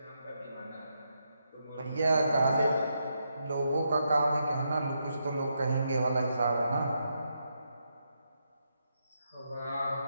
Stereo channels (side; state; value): both; inverted; correlation -0.81